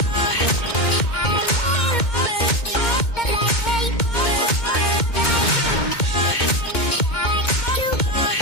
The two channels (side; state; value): right; late; 2.2 ms